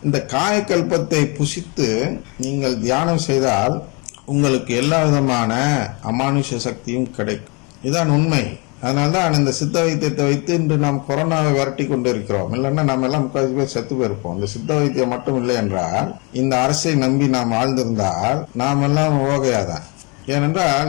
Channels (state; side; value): quieter; right; 30.7 dB